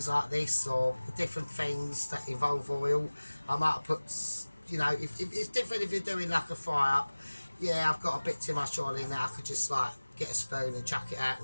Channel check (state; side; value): inverted; both; correlation -1.00